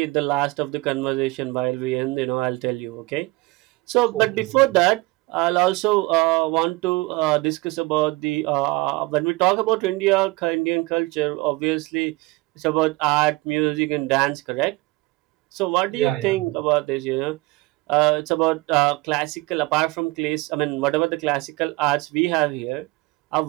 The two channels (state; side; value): quieter; left; 22.4 dB